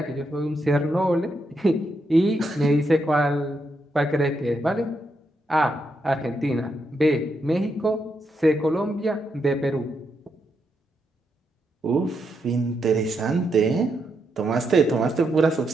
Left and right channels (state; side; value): normal; both; correlation 0.81